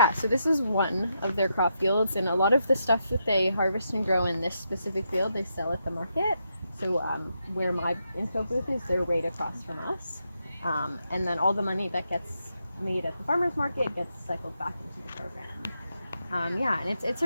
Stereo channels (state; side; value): inverted; both; correlation -0.82